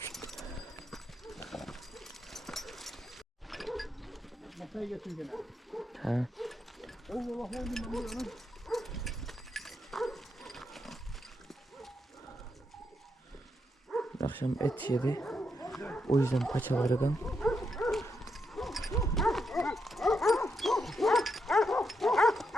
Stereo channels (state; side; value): normal; both; correlation 0.82